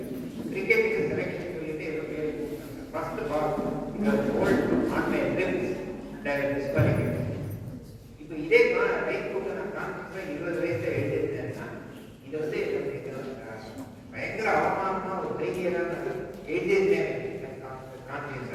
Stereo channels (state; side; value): identical; both; correlation 1.00